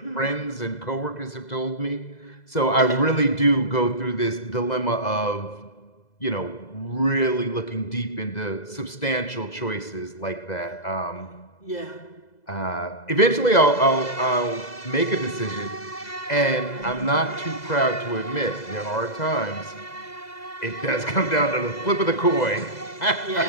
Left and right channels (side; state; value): right; late; 2.0 ms